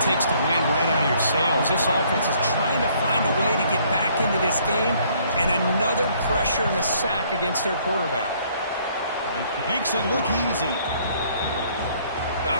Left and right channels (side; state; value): both; inverted; correlation -0.63